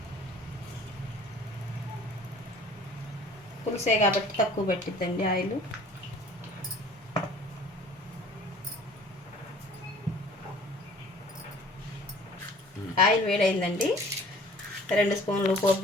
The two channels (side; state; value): both; normal; correlation 0.49